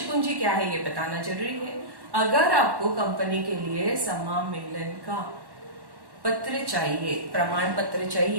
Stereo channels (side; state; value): left; late; 1.1 ms